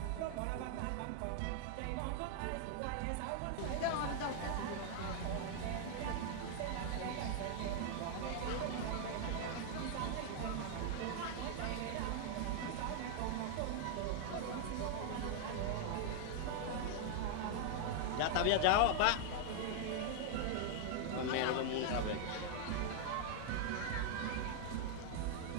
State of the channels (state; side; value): different; both; correlation -0.01